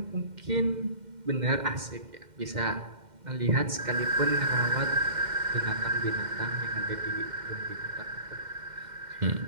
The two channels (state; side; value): late; left; 2.1 ms